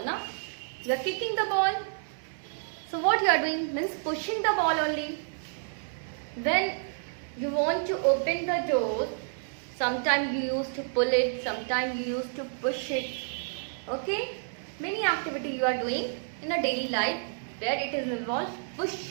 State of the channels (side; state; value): left; silent; digital silence